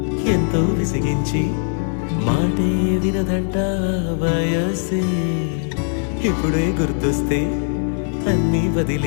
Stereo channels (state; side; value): silent; right; 63 dB below the other